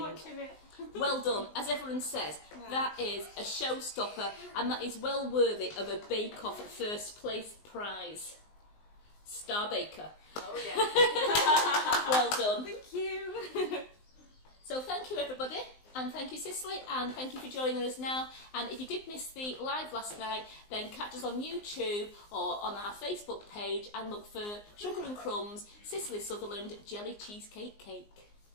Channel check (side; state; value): right; late; 19 ms